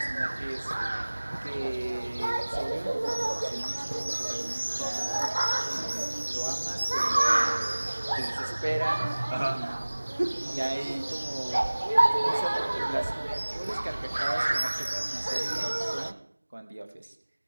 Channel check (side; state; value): both; inverted; correlation -1.00